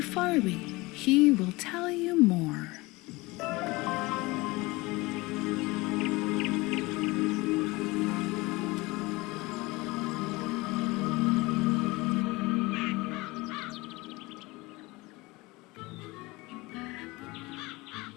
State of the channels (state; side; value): quieter; right; 22.6 dB